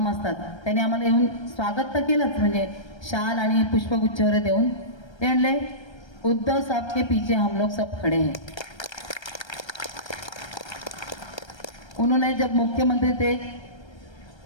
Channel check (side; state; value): right; late; 1.3 ms